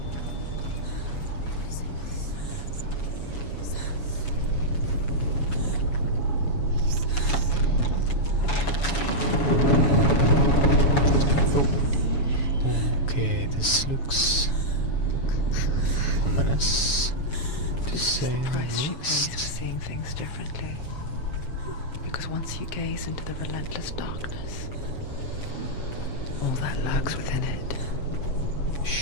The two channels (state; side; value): late; right; 7.1 ms